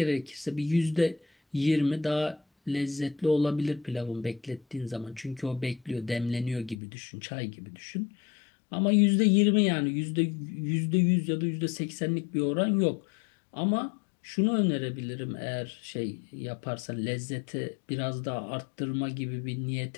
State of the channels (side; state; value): right; drops out; at 6.8 s